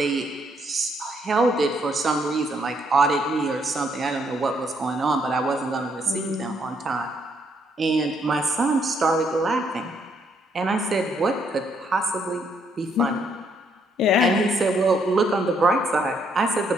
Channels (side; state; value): both; normal; correlation 0.71